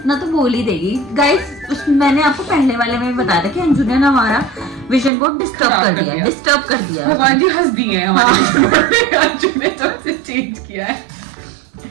तो बोल ही देगी। गाइस, मैंने आपको पहले वाले में भी बताया था कि अंजू ने ना हमारा विजन बोर्ड डिस्टर्ब कर दिया। भगवान जी हंस दिए हैं हमारे विजन बोर्ड पे। अंजू ने तो उसे चेंज किया है।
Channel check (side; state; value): left; drops out; at 5.1 s